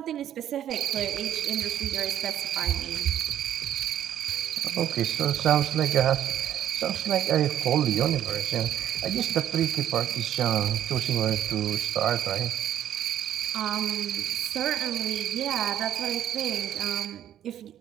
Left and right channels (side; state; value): left; quieter; 10.9 dB